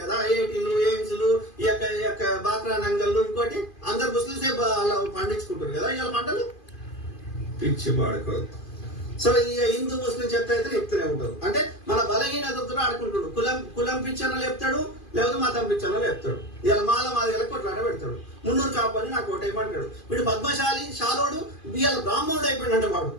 కదా, ఐఐటీలు, ఎయిమ్స్లు, ఈ యొక్క బాక్రా నంగళ్ళు, ఇంకోటి అందరు ముస్లింసే అలా పండించుకుంటారు కదా ఇవాళ పంటలు. పిచ్చి పాడుకోదు. సో ఈ హిందూ ముస్లిం చెత్త అయితే చెప్తూనే ఉంటారు. అంటే మన బలహీనతతో ఆడుకుంటాడు. కులం పిచ్చర్లో చెప్తాడు, లేకపోతే మతం పిచ్చర్లో చెప్తాడు. ఇలా మాది కొట్లాట పెడతాడు. మున్నూరు కాపని నాకు ఓటేయమంటాడు. వీడు పద్మశాలి షాలోడు ఇవాళ బ్రాహ్మణుడు అయిపోయినంట. వాడు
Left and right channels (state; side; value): late; right; 2.5 ms